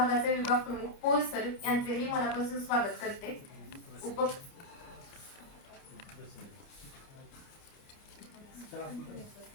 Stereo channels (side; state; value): right; late; 29 ms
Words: विभाग प्रमुख पोल सर यांचेही मनापासून स्वागत करते.